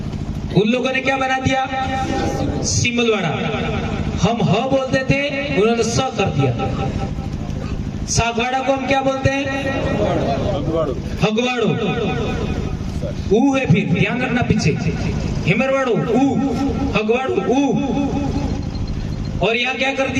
उन लोगों ने क्या बना दिया? सिमलवाड़ा। हम ह बोलते थे, उन्होंने स कर दिया। सागवाड़ा को हम क्या बोलते हैं? हगवाड़ो। सर ऊ है, फिर ध्यान रखना पीछे हिमरवाड़ो ऊ, हगवाड़ो ऊ, और यहाँ क्या कर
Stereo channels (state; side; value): identical; both; correlation 1.00